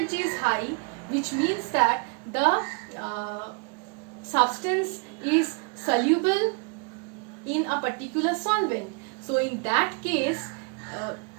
is high, which means that the substance is soluble in a particular solvent. So in that case,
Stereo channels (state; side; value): quieter; left; 33.6 dB